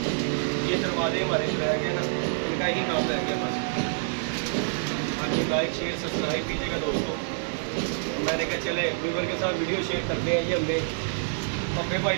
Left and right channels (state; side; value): silent; left; digital silence